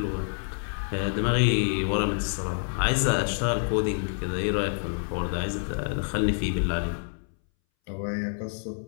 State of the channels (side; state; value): right; silent; 60 dB below the other